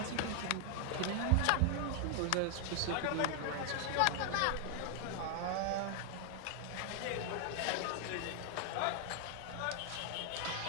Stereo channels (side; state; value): both; different; correlation 0.00